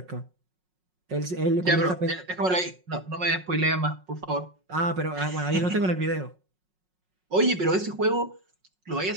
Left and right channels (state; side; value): late; left; 5.4 ms